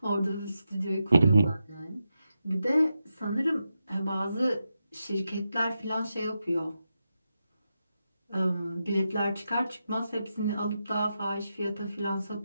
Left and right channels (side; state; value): both; inverted; correlation -0.88